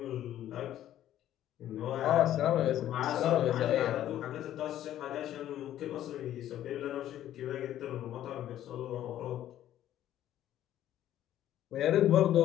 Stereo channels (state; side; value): quieter; right; 12.2 dB